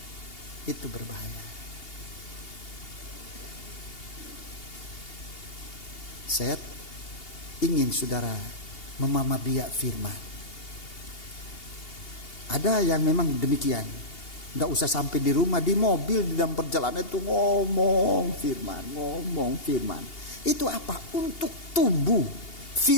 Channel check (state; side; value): late; right; 2.8 ms